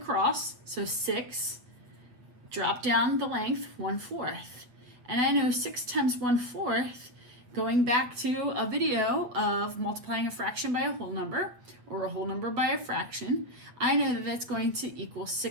so 6, drop down the length 1/4. And I know 6 times 1/4, going back to a video of multiplying a fraction by a whole number, or a whole number by a fraction, I know that that's going to equal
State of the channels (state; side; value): late; left; 8.2 ms